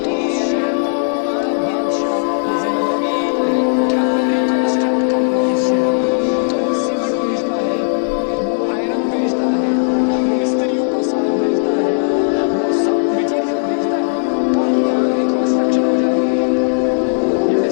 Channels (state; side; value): silent; right; digital silence